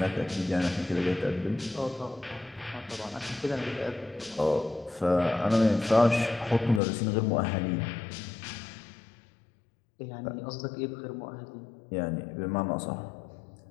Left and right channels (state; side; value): drops out; right; at 6.8 s